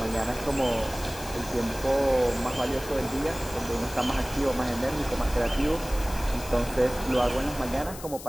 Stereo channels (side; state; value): left; noise; hiss, 14 dB below the sound